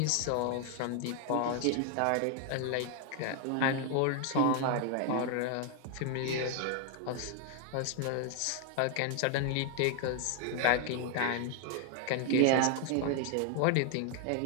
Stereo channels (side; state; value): both; different; correlation 0.00